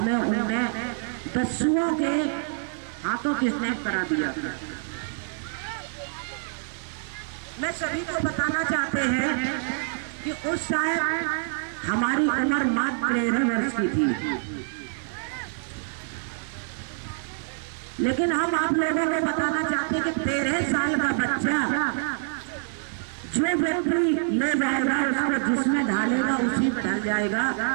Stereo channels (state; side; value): silent; left; 61 dB below the other